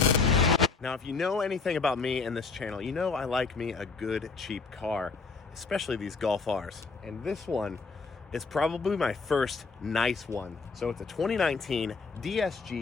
Now, if you know anything about me and this channel, you know I like me a good cheap car, especially these Golf Rs. And this one is probably my first nice one. So it's a 2019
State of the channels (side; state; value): right; quieter; 4.6 dB